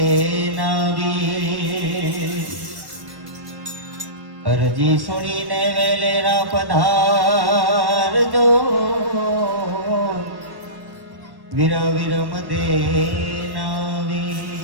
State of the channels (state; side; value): late; left; 1.1 ms